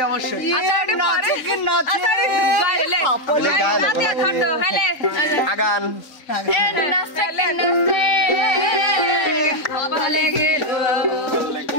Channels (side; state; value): right; late; 3.9 ms